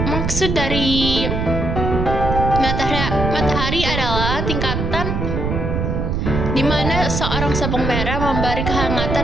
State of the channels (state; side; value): noise; right; rumble, 1 dB below the sound